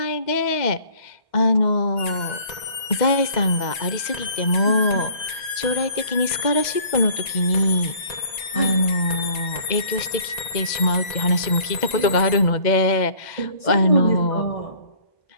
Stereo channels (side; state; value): right; late; 2.0 ms